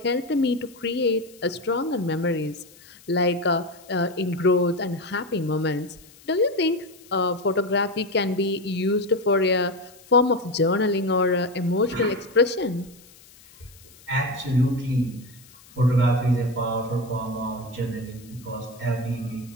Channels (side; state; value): left; noise; hiss, 24 dB below the sound